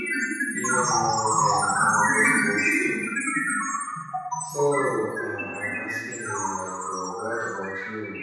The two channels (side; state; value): both; identical; correlation 1.00